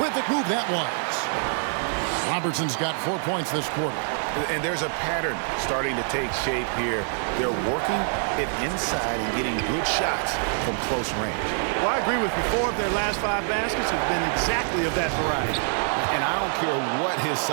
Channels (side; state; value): left; silent; 61 dB below the other